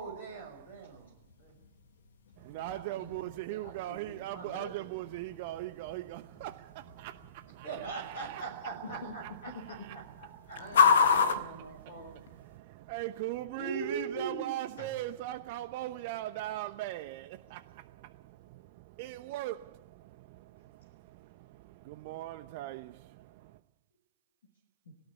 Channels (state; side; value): inverted; both; correlation -0.45